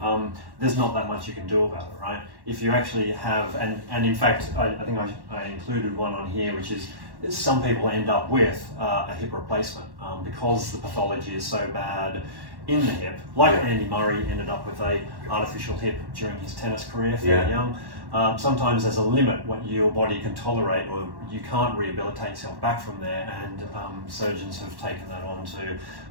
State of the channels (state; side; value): late; left; 1.1 ms